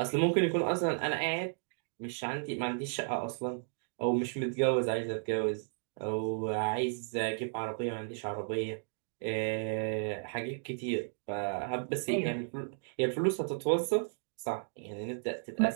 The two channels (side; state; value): left; silent; digital silence